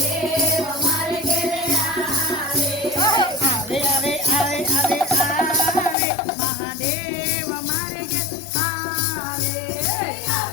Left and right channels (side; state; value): right; drops out; at 6.0 s